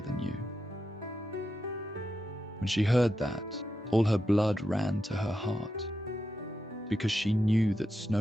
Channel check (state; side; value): normal; both; correlation 0.87